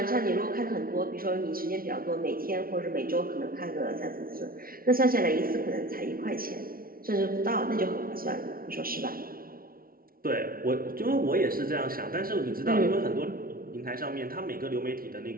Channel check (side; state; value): left; late; 0.43 ms